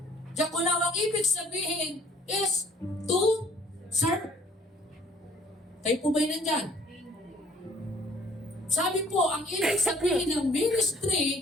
diakonao ang ibig sabihin is to serve. Kayo po ba'y nandyan? Sabi po, ang ibig sabihin ng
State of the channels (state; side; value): normal; both; correlation 0.58